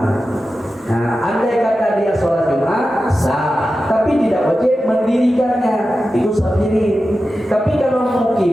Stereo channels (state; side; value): normal; both; correlation 0.92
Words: Nah, andai kata dia sholat Jumat sah, tapi tidak wajib mendirikannya, itu safirin. Tapi kalau